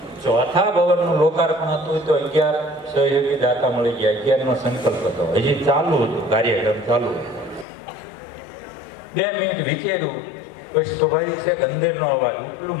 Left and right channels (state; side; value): drops out; right; at 7.7 s